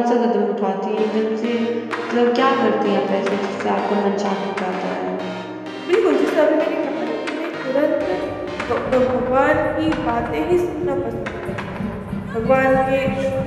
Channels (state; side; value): identical; both; correlation 1.00